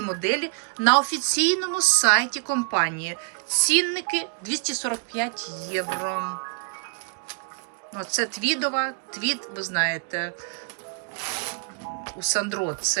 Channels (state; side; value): quieter; left; 39.8 dB